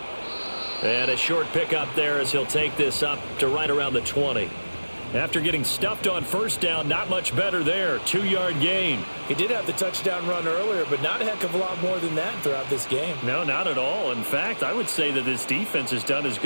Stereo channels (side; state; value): both; inverted; correlation -1.00